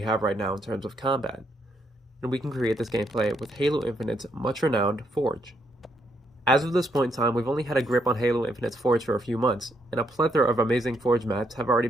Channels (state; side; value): normal; both; correlation 0.76